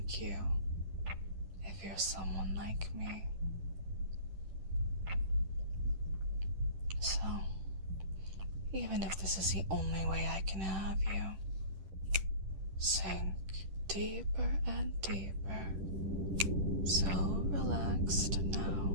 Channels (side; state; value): left; late; 10 ms